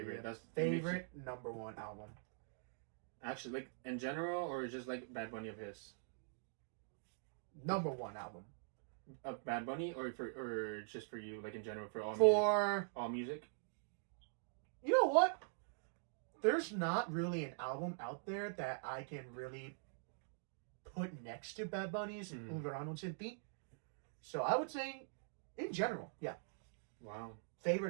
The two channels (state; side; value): silent; left; digital silence